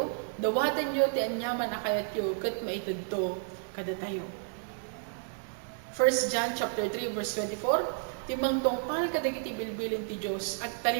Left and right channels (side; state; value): left; silent; digital silence